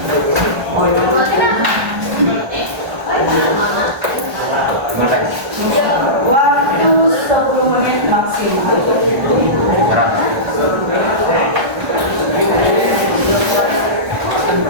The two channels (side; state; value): left; late; 1.5 ms